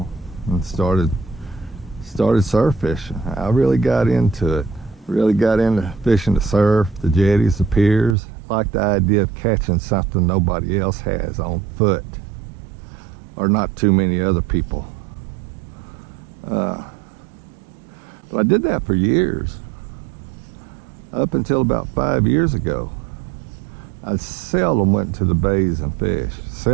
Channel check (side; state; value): left; drops out; at 8.2 s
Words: and started surf fishing. I really got into it. Really got into fishing the surf, the jetties, the piers. Like the idea of catching something nobody else has on foot, or not too many other people. But I did that for years, up until about 5 years ago. I seldom went to the bays and fished.